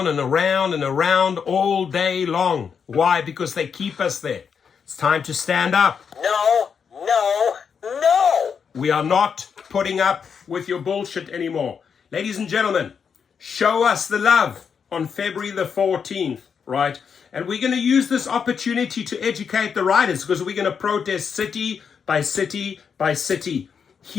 and around and around all day long. Why? Because they keep us there. It's time to stand up. No, no, no! We are not putting up with your bullshit anymore. Ladies and gentlemen, show us the love on February the 14th, right? And we're going to use this opportunity to educate the riders because we're going to protest city by city by city.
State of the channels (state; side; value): quieter; right; 6.6 dB